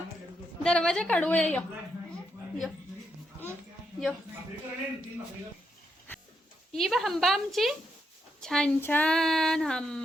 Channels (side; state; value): both; normal; correlation 0.80